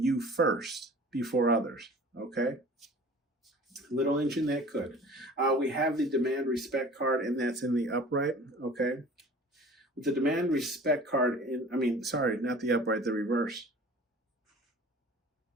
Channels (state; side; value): normal; both; correlation 0.45